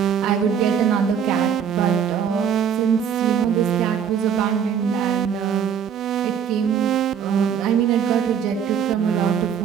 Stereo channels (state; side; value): quieter; left; 7.9 dB